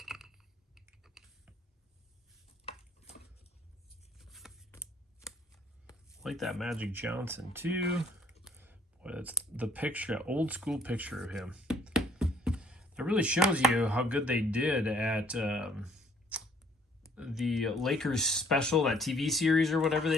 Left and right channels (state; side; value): normal; both; correlation 0.61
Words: Like that Magic Johnson too. Boy, that's the picture, old school picture of him. It really shows you how good they did at the Lakers special, that TV series or whatever